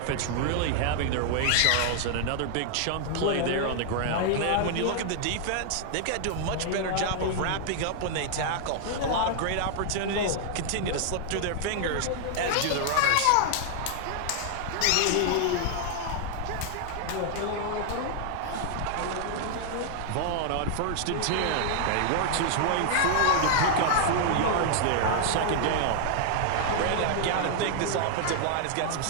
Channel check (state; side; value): different; both; correlation 0.00